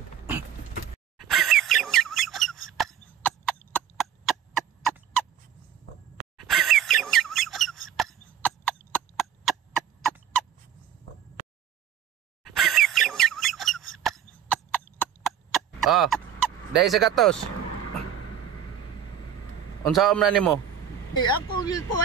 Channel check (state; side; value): quieter; left; 9.2 dB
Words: Dahil sa gatos. Unsaon man nimo? Ako